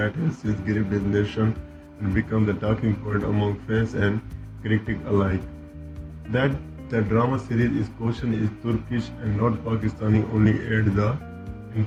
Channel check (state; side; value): identical; both; correlation 1.00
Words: has since gripped his nation and become the talking point among fans and critics alike. That the drama series is caution is Turkish and not Pakistani only add the